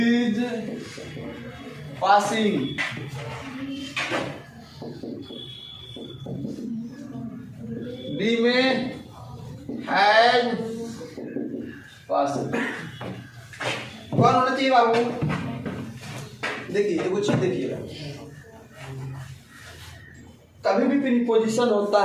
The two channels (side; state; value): both; identical; correlation 1.00